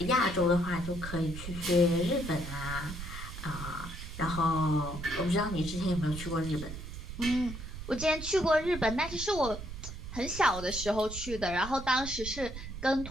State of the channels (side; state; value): right; noise; rumble, 9 dB below the sound